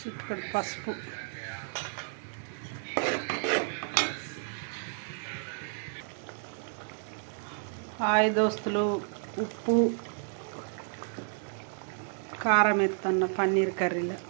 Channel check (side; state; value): left; silent; 57 dB below the other